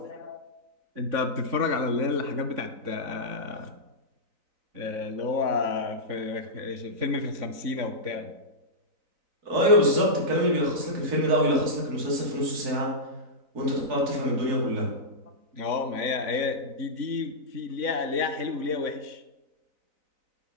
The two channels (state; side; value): late; left; 3.9 ms